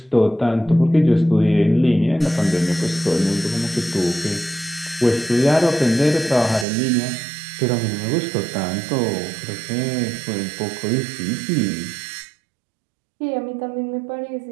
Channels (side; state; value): left; drops out; at 6.7 s